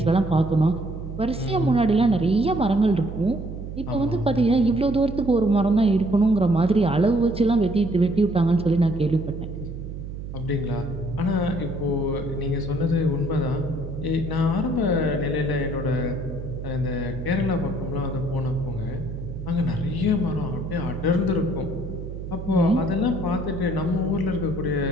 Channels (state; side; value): noise; right; hum, 9 dB below the sound